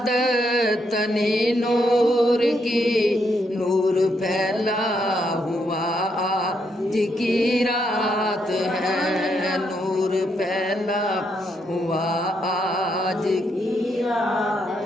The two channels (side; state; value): both; normal; correlation 0.77